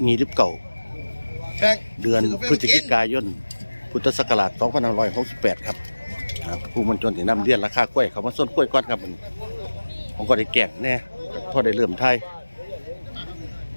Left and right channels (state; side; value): inverted; both; correlation -1.00